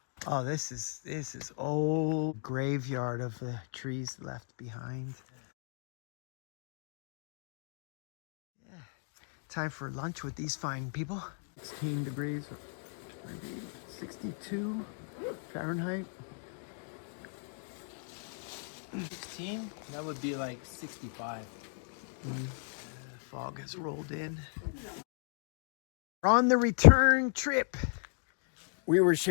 Oh, this is old graveyard of the trees left behind. Yeah. Time for lunch with these fine people. 16 degrees, 62 Fahrenheit. 16? That would be like 65. Fog has rolled in. We're on the return trip. We were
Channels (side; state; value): right; silent; 54 dB below the other